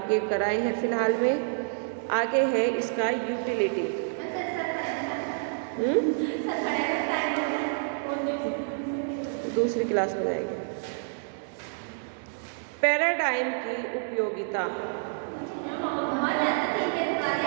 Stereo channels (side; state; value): left; silent; digital silence